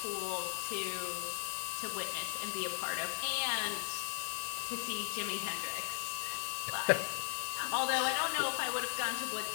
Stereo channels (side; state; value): right; silent; digital silence